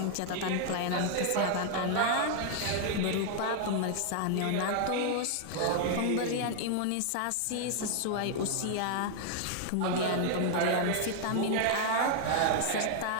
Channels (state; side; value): different; both; correlation 0.00